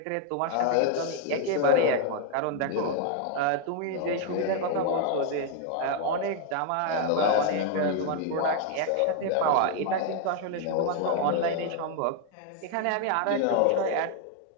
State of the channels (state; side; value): different; both; correlation 0.00